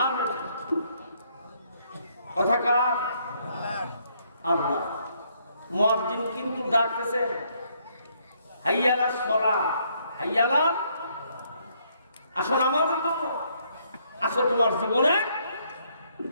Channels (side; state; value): both; inverted; correlation -0.70